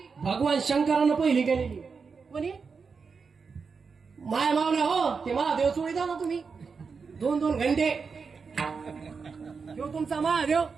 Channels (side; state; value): left; quieter; 5.3 dB